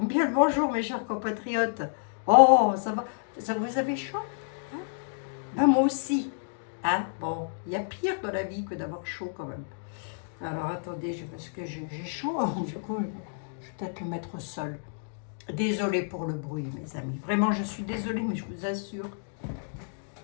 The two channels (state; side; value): silent; right; digital silence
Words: le bonjour, mes chers compatriotes. Oh, ça va. Ça, vous avez chaud, hein? Ben, moi aussi. Hein? Bon, il y a pire dans la vie que d'avoir chaud quand même. Alors attendez, parce que j'ai chaud, du coup, je vais peut-être le mettre au sol. Désolée pour le bruit, mes amis. Vraiment, je suis désolée, mais je vous assure,